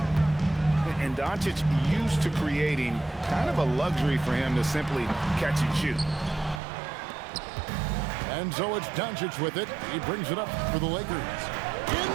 And Doncic used to creating kind of a luxury for him to simply catch and shoot. And so it's Doncic with it. He brings it up for the Lakers.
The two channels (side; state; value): left; drops out; at 6.6 s